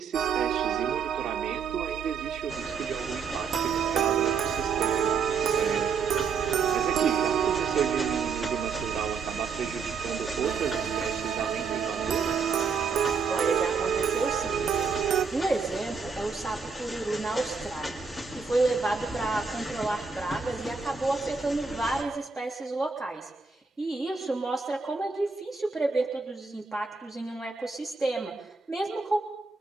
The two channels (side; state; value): left; quieter; 5.4 dB